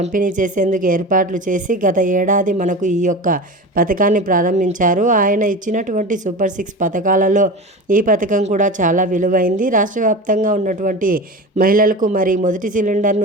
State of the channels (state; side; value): normal; both; correlation 0.29